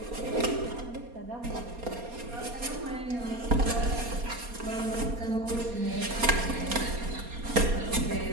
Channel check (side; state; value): left; late; 4.2 ms